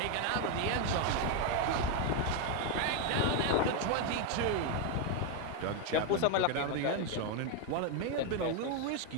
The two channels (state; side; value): different; both; correlation 0.01